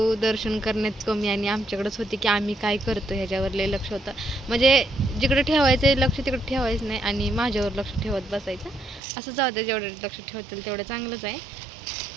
दर्शन करण्यात कमी आणि आमच्याकडेच होती की आम्ही काय करतो ह्याच्यावर लय लक्ष होतं. म्हणजे जिकडे ठेवायचं लक्ष तिकडे ठेवायचं नाही आणि माझ्यावर लक्ष ठेवत बसायचं. असं जाऊ दे, जेवढं लक्ष ठेवतील तेवढं चांगलंच आहे.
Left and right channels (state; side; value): drops out; left; at 9.0 s